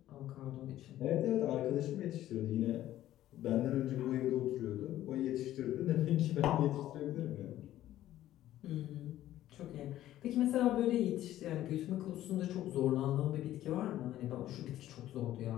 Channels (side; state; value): right; quieter; 13.5 dB